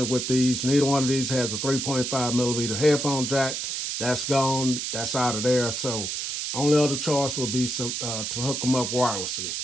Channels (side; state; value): right; noise; hiss, 3 dB below the sound